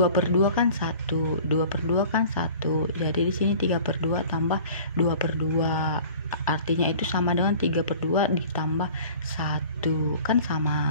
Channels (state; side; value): inverted; both; correlation -0.45